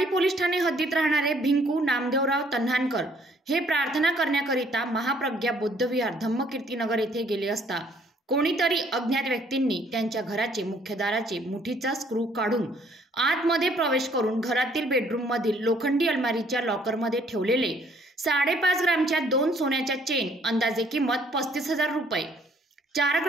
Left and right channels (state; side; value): normal; both; correlation 0.62